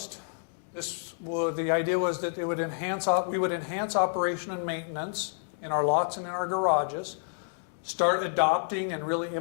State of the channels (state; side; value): silent; right; digital silence